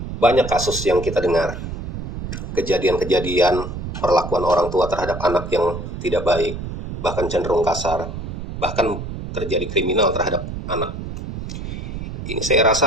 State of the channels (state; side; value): noise; right; rumble, 7 dB below the sound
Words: Banyak kasus yang kita dengar, kejadian-kejadian perlakuan orang tua terhadap anak yang tidak baik, bahkan cenderung kasar, bahkan terjadi kriminal terhadap anak. Ini saya